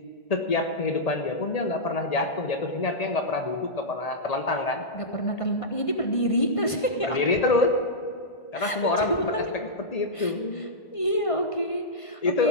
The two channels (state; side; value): late; right; 1.5 ms